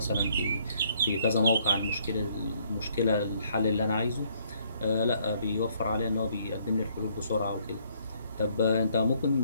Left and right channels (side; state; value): both; inverted; correlation -0.67